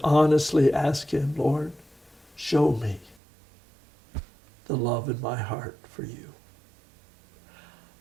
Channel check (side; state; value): left; drops out; at 3.2 s